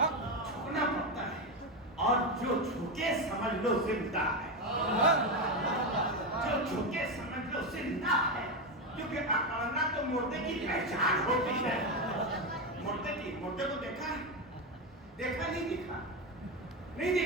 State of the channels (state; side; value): normal; both; correlation 0.12